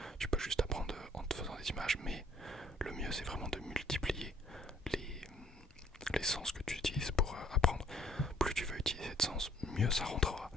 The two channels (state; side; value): normal; both; correlation 0.62